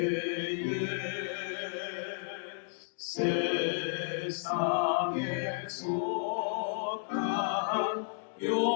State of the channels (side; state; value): right; silent; digital silence